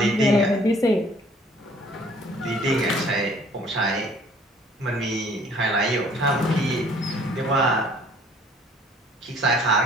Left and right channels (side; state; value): both; normal; correlation 0.56